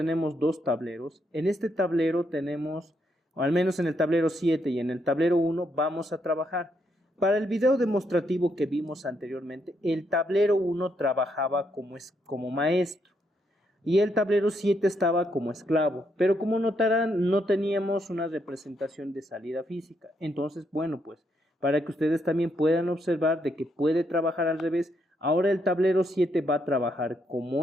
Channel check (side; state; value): both; normal; correlation 0.77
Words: dos tableros. En este tablero tenemos, o al menos en el tablero 7 y en el tablero 1, vamos a trabajar. Para el video demostrativo que vimos anteriormente, el tablero 1 trabajaba como maestro y el tablero 7 estaba como esclavo, pero como notarán no teníamos una representación de salida física. Entonces, bueno, pues para que ustedes también puedan observar de que puede trabajar al revés, ahora el tablero 7 va a trabajar